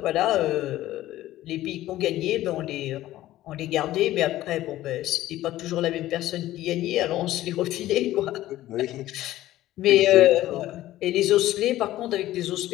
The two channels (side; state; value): right; quieter; 14.9 dB